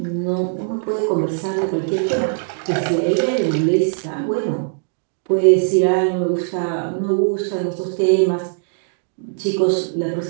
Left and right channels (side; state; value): left; silent; digital silence